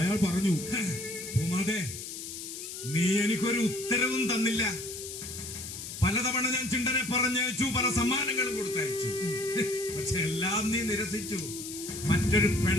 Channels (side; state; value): left; noise; hiss, 9 dB below the sound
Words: പറഞ്ഞു, പൂമാതേ നീ എനിക്കൊരു ഉത്തരവും തന്നില്ല. പലതവണ ഞാൻ ചിണ്ടനെ പറഞ്ഞയച്ചു, പല സമ്മാനങ്ങളും കൊടുത്തയച്ചു. പക്ഷെ എല്ലാം നീ നിരസിച്ചു. മറ്റൊരു